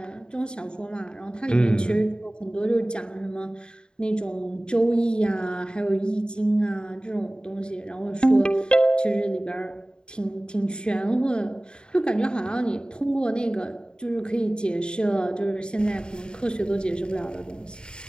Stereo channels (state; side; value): late; right; 0.049 ms